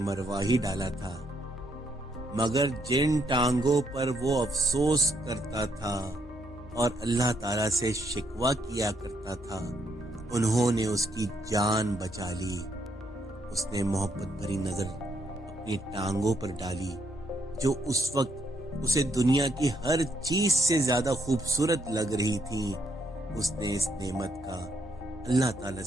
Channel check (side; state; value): both; normal; correlation 0.74